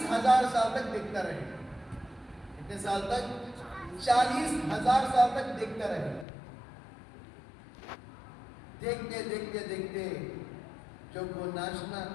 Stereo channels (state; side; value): drops out; right; at 6.2 s